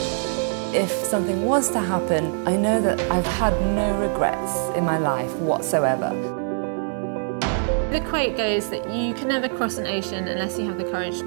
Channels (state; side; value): silent; left; 63 dB below the other